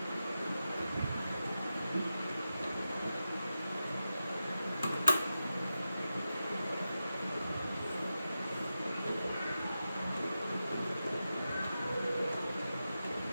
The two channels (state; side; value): inverted; both; correlation -0.91